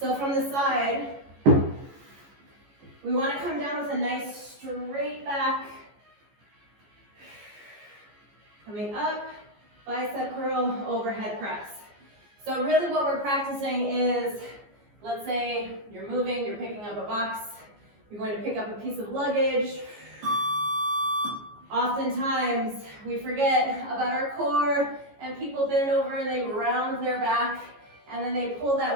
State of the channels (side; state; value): left; late; 14 ms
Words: from the side, we want to come down with a nice straight back. Coming up, bicep curl, overhead press. So really what we're practicing is, let's say you're moving, you're picking up a box, you're going to pick up a piece of luggage. Oftentimes, we forget about our core, and people bend over and they round their back, and then they pull